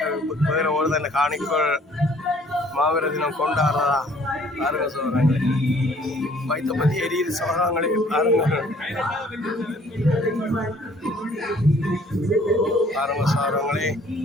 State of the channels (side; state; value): both; normal; correlation 0.57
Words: வேற ஒரு தன்னை காணிக்கோள் மாவீர தினம் கொண்டாடுறதா. பாருங்க சோழர்களே, வைத்த பற்றி எரியுது சோழங்களே. பாருங்க சோழங்களே,